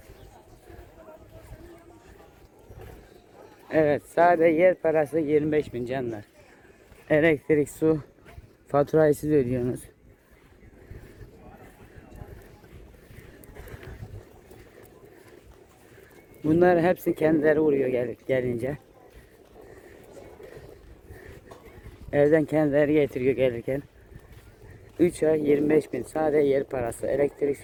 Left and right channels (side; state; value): both; identical; correlation 1.00